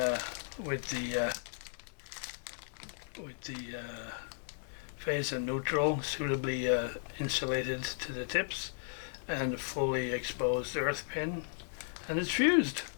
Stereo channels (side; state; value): right; silent; digital silence